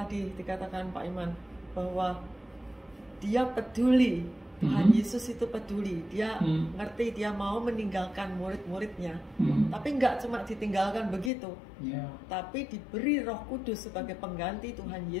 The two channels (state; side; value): drops out; right; at 11.3 s